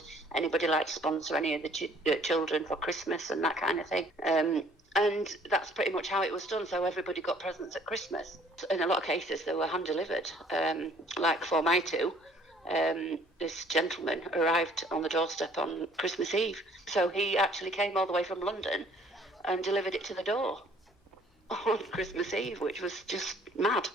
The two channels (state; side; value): normal; both; correlation 0.57